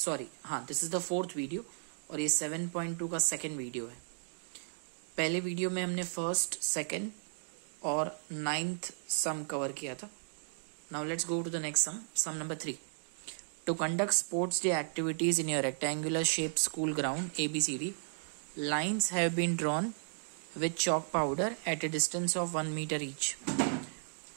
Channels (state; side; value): silent; left; digital silence